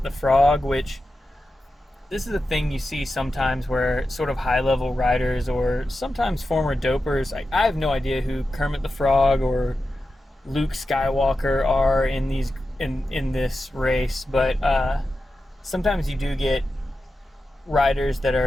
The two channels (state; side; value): normal; both; correlation 0.91